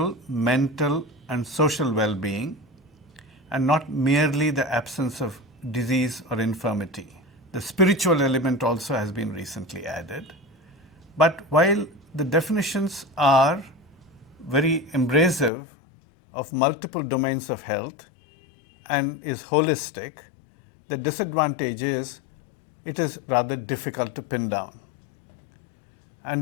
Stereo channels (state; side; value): drops out; right; at 15.5 s